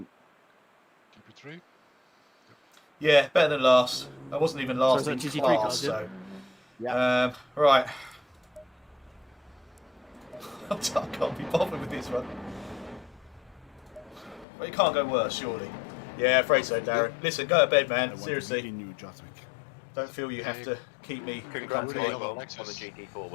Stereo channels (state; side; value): drops out; right; at 14.5 s